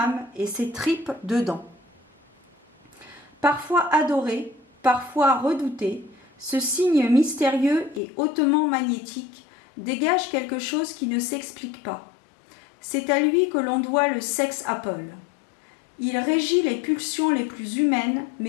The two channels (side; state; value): right; drops out; at 8.0 s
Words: et ses tripes dedans. Parfois adoré, parfois redouté, ce signe mystérieux et hautement magnétique dégage quelque chose qui ne s'explique pas. C'est à lui que l'on doit le sex apple. Il régit les pulsions les plus humaines,